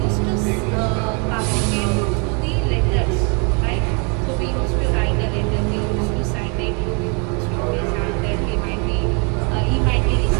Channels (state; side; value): quieter; left; 35.1 dB